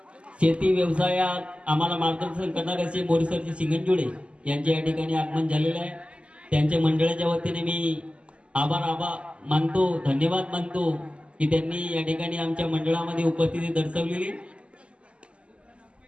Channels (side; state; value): left; late; 0.055 ms